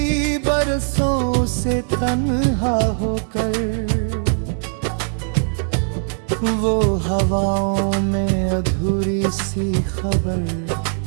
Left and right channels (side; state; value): left; silent; digital silence